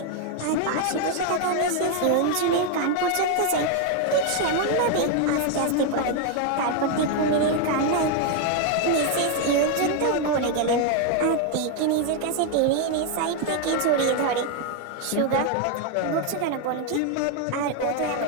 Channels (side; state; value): both; different; correlation 0.01